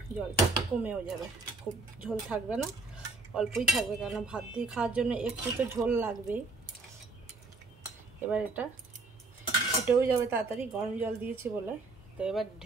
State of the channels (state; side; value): quieter; left; 3.5 dB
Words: জলটা কমেও যাবে, খুব ঝোল থাকবে না, অল্পই থাকবে, কেন ভাত দিয়ে খাওয়ার জন্য একটু তো ঝোল লাগবেই। এবার এটা ফুটেও যাবে তাড়াতাড়ি, গরম জল দিয়েছি বলে। তো এবার